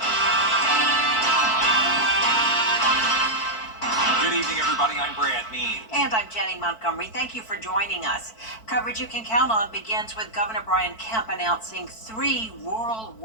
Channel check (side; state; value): right; late; 4.5 ms